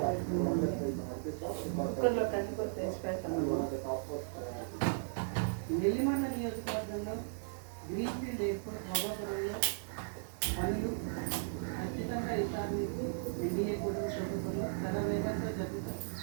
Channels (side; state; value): left; silent; digital silence